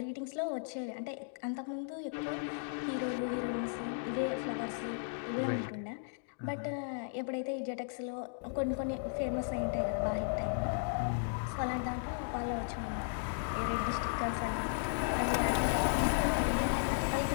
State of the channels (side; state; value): right; silent; digital silence